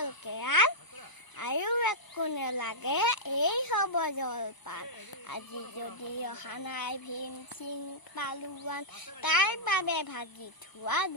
আৰু একো নেলাগে, এই হ'ব জলপান। আজি যদি অহা নাই ভীম সিং পালোৱান, তাৰ বাবে ভাজি থোৱা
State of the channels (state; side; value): late; right; 1.0 ms